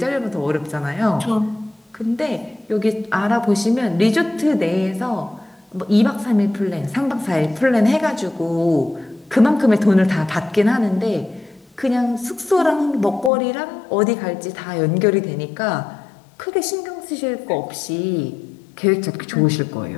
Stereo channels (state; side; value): drops out; right; at 13.3 s